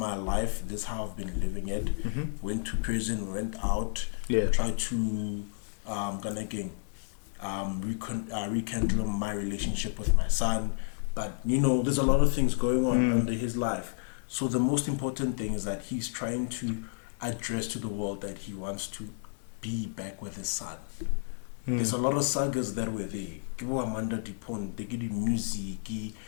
life, this is how I've been living it. Went to prison, went out, tried to rekindle my relationship with my son. But there's a lot of things going on under his life. So the most important thing is that he's trying to address to the world that he wants to be back with his son. There's a lot of sagas that were there. Amanda Pont, they give music,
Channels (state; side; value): silent; right; digital silence